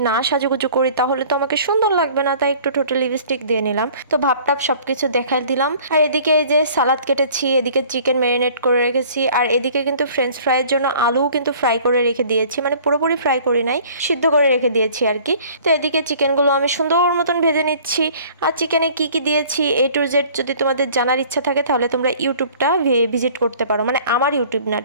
না সাজুগুজু করি তাহলে তো আমাকে সুন্দর লাগবে না, তাই একটু টোটাল লিপস্টিক দিয়ে নিলাম। তো ভাবটাপ সবকিছু দেখাই দিলাম। আর এদিকে এই যে সালাদ কেটেছি, এদিকে চিকেন ম্যারিনেট করে রেখেছি, আর এদিকে কিন্তু ফ্রেঞ্চ ফ্রাইয়ের জন্য আলুও কিন্তু ফ্রাই করে রেখে দিয়েছি, মানে পুরোপুরি ফ্রাই করি নাই, সিদ্ধ করে রেখে দিয়েছি আর কি। তো এদিকে চিকেনগুলো আমি সুন্দর মতন ভেজে নিচ্ছি। আর চিকেনে কি কি দিয়েছি A to Z যদি তোমাদের জানার ইচ্ছা থাকে তাহলে তোমরা ইউটিউবটা ভিজিট করতে পারো, মানে আমার ইউটিউব না,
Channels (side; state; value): both; inverted; correlation -0.50